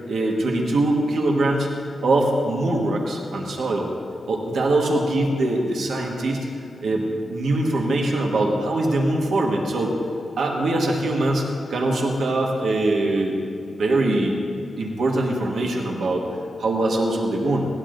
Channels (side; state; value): both; normal; correlation 0.87